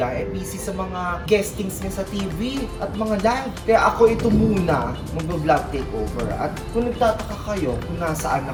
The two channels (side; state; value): both; identical; correlation 1.00